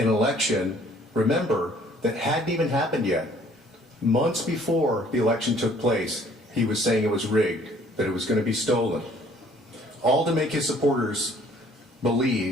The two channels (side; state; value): both; normal; correlation 0.58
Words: election, remember, that hadn't even happened yet. Months before the election took place, he was saying it was rigged, that it was going to be stolen. All to make his supporters